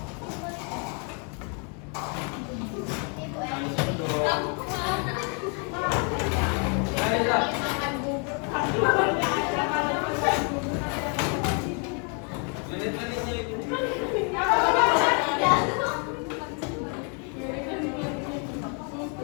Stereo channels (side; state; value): right; quieter; 38.1 dB